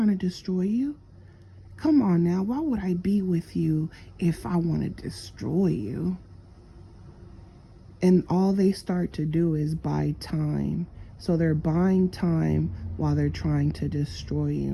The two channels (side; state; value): both; identical; correlation 1.00